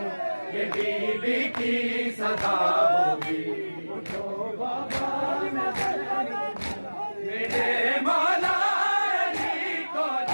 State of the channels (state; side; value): inverted; both; correlation -1.00